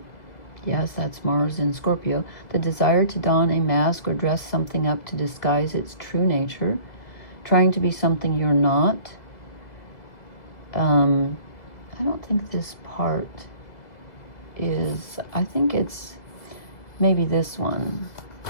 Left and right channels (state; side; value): late; right; 1.9 ms